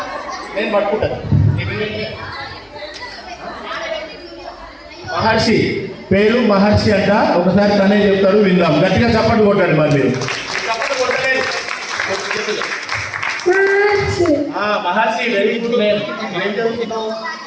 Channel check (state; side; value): identical; both; correlation 1.00